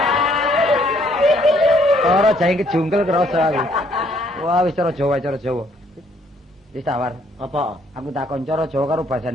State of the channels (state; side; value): normal; both; correlation 0.66